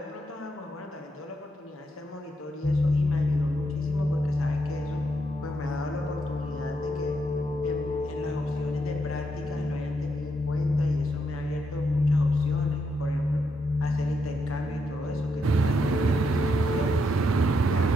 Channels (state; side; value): normal; both; correlation 0.79